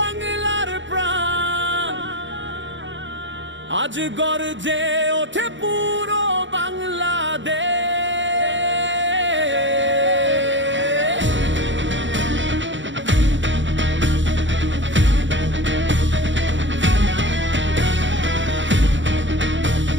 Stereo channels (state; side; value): late; left; 0.54 ms